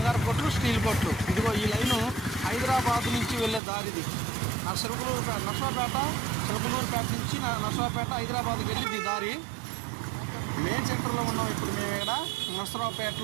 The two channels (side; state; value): left; drops out; at 3.6 s